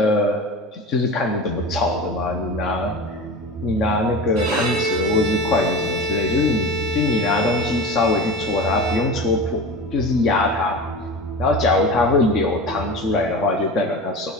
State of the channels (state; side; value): normal; both; correlation 0.31